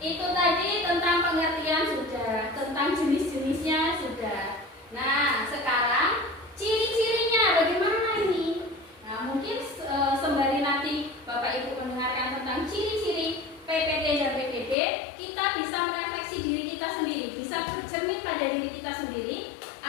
tadi tentang pengertian sudah, tentang jenis-jenisnya sudah. Nah, sekarang ciri-cirinya bagaimana ini? Nah, mungkin sembari nanti Bapak Ibu mendengarkan tentang ciri-ciri PPT dan PPP, kita bisa merefleksi diri kita sendiri, bisa bercermin pada diri kita sendiri,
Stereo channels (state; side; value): drops out; right; at 14.8 s